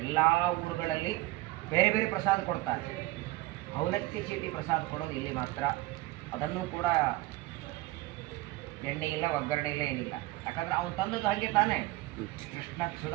ಎಲ್ಲ ಊರುಗಳಲ್ಲಿ ಬೇರೆ ಬೇರೆ ಪ್ರಸಾದ ಕೊಡ್ತಾರೆ, ಅವಲಕ್ಕಿ ಚೀಟಿ ಪ್ರಸಾದ ಕೊಡೋದು ಇಲ್ಲಿ ಮಾತ್ರ. ಅದನ್ನು ಕೂಡ ಎಣ್ಣೆ ಇಲ್ಲ, ಒಗ್ಗರಣೆ ಇಲ್ಲ, ಏನಿಲ್ಲ. ಯಾಕಂದರೆ ಅವನು ತಂದದ್ದು ಹಾಗೆ ತಾನೇ. ಕೃಷ್ಣ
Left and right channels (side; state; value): left; quieter; 18.7 dB